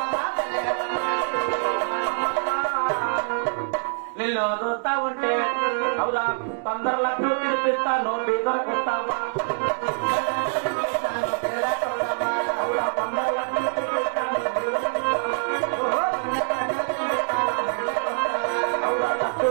నిన్ను అదవుతా ఉంటే అవురా 15 లక్షలు పిలిపిస్తాను పేదలకు వస్తావా 15 లక్షలు పిలిపిస్తాను అవురా పట్టు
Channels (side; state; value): left; silent; 62 dB below the other